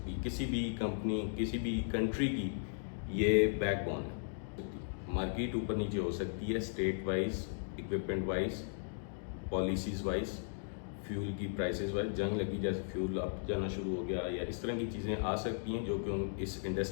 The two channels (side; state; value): right; silent; digital silence